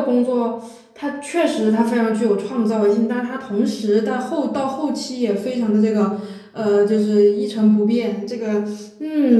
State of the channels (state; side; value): identical; both; correlation 1.00